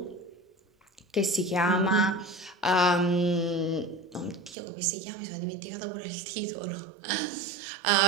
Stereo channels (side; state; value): left; drops out; at 4.5 s